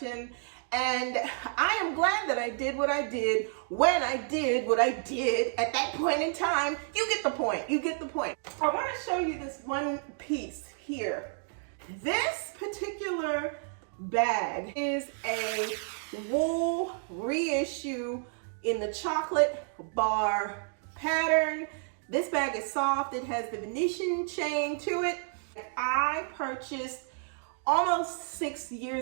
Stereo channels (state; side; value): silent; left; 57 dB below the other